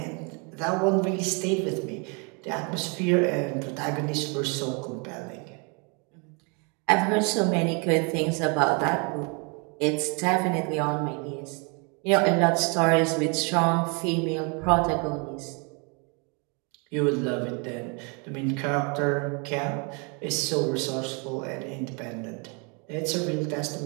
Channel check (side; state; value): left; quieter; 33.8 dB